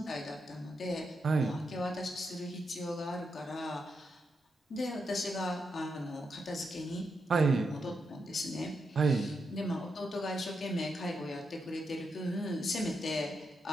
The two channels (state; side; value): normal; both; correlation 0.84